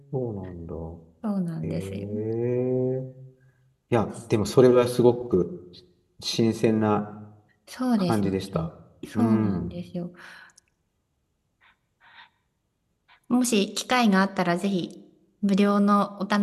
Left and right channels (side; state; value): both; identical; correlation 1.00